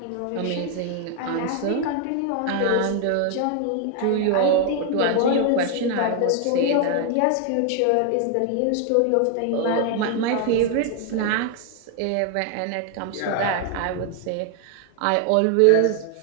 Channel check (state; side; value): different; both; correlation 0.00